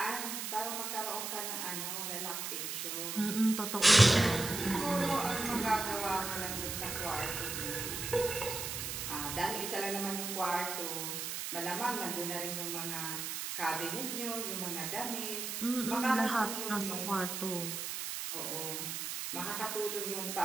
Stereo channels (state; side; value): noise; right; hiss, 4 dB below the sound